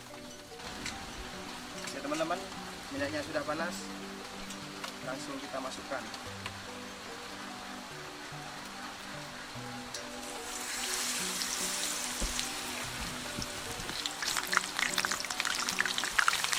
Ya teman-teman, minyaknya sudah panas, langsung kita masukkan.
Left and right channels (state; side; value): identical; both; correlation 1.00